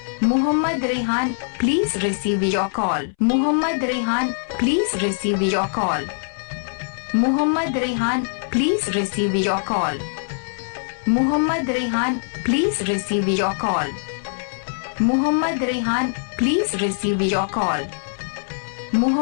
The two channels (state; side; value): silent; right; 64 dB below the other